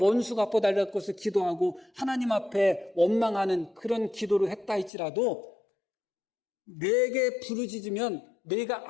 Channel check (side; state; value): right; drops out; at 4.9 s